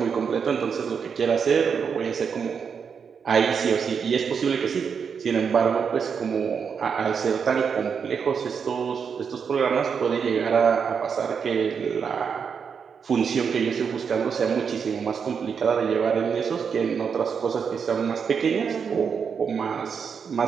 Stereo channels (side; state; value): left; quieter; 6.4 dB